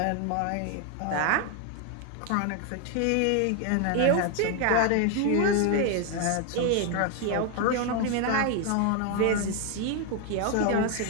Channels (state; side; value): different; both; correlation 0.01